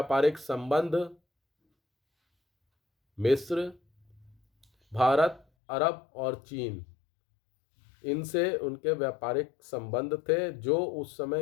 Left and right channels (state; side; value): drops out; right; at 5.5 s